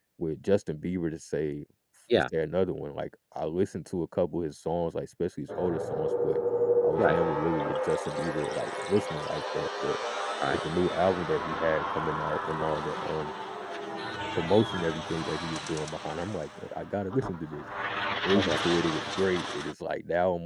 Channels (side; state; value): both; identical; correlation 1.00